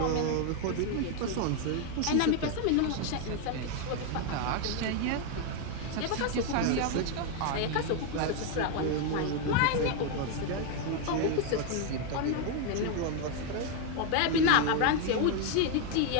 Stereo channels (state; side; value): different; both; correlation 0.01